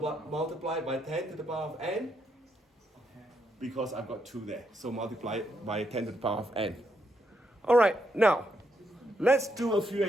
by 10 to the power of n, because I've got 2 there. So multiply it by 10 to the power of n. Alright, now let's do a few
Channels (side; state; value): both; normal; correlation 0.79